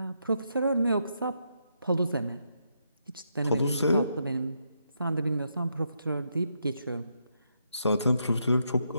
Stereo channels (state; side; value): inverted; both; correlation -0.80